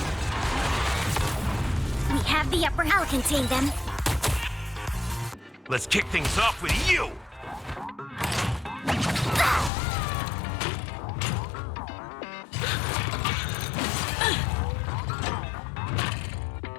have the upper hand. I'll contain them. Let's kick things off with you!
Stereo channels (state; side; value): drops out; right; at 9.7 s